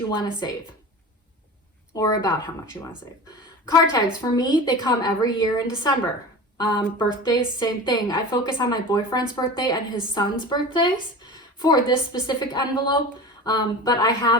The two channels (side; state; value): both; normal; correlation 0.33